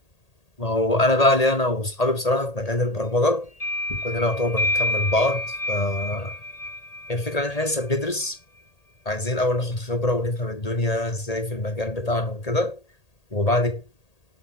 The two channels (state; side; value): late; right; 1.8 ms